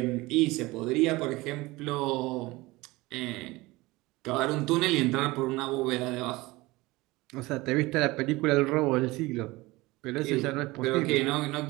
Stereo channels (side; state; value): left; quieter; 21.1 dB